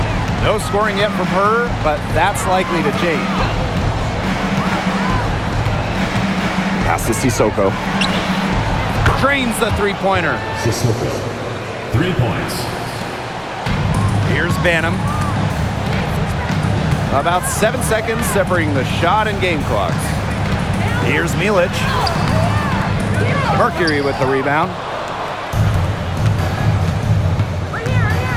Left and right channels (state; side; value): identical; both; correlation 1.00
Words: No scoring yet from her, but that's likely to change. Pass to Sissoko. Drains the three-pointer. Sissoko. 3 points. Here's Banham. About 7 seconds separating the shot and game clocks. Here's Milic. Mercury with the rebound.